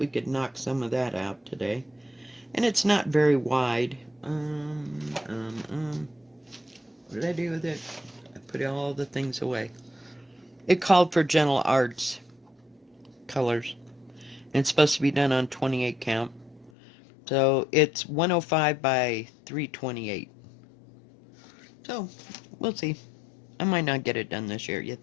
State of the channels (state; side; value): drops out; right; at 16.7 s